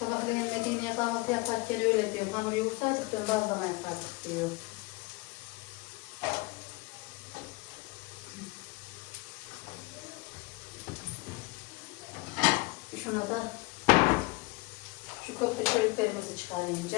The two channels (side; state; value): right; quieter; 24.0 dB